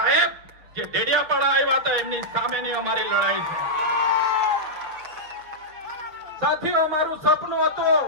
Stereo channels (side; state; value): left; late; 6.6 ms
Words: જે ડેડિયાપાડા આવ્યા હતા એમની સામેની અમારી લડાઈ છે. સાથીઓ, અમારું સપનું